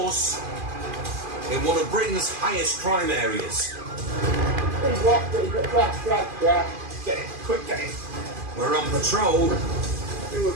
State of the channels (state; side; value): late; left; 2.4 ms